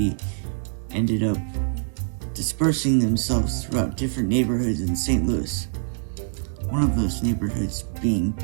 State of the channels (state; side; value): silent; left; digital silence